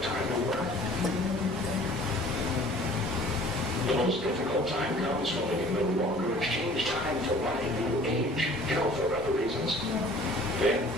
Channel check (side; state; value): both; normal; correlation 0.50